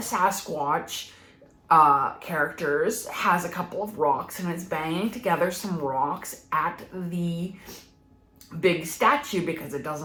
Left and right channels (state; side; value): identical; both; correlation 1.00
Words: characters has a couple of rocks and is banging together some rocks at the big statue because it